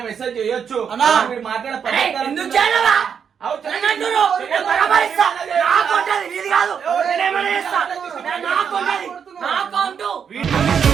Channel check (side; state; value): left; quieter; 7.2 dB